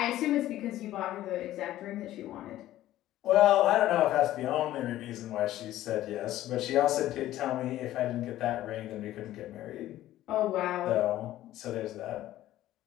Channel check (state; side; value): quieter; right; 14.2 dB